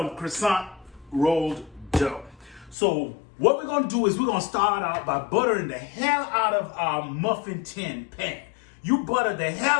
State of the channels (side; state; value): right; drops out; at 2.8 s